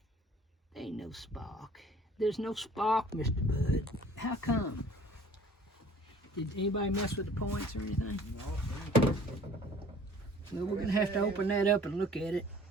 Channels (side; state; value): both; normal; correlation 0.50